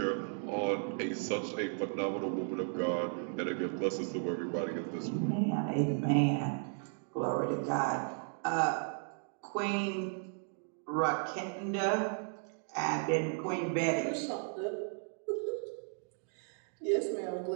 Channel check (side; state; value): left; silent; 54 dB below the other